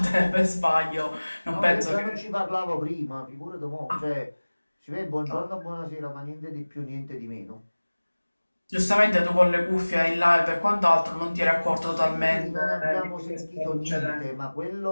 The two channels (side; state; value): both; inverted; correlation -1.00